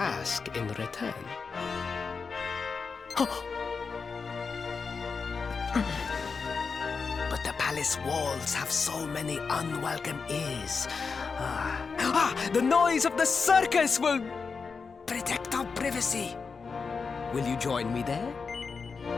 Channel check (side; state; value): right; quieter; 5.1 dB